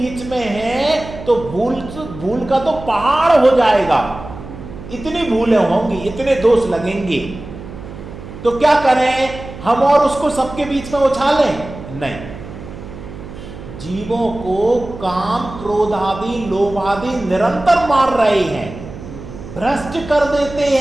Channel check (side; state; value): right; noise; hum, 13 dB below the sound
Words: में है तो भूल का तो पहाड़ हो जाएगा, इतनी भूलें होंगी, इतने दोष लगेंगे। तो क्या करें हम, और उसको सबके बीच में उछालें? नहीं, जीवों को काम, क्रोध आदि, लोभ आदि निरंतर मार रहे हैं, भ्रष्ट कर देते